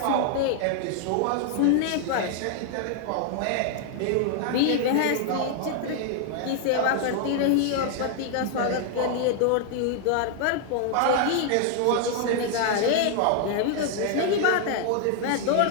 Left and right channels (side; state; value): both; different; correlation 0.00